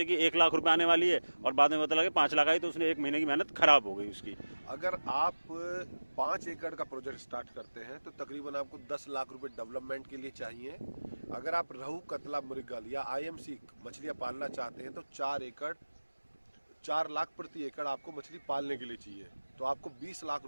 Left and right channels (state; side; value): inverted; both; correlation -1.00